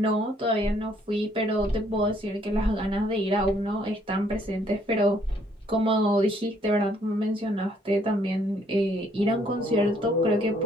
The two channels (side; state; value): both; normal; correlation 0.66